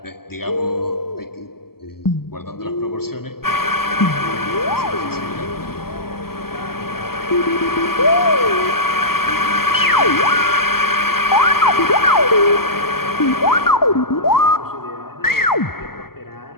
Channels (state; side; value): late; right; 0.94 ms